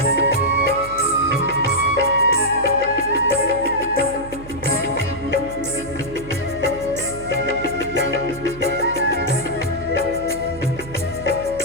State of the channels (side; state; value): right; noise; hum, 15 dB below the sound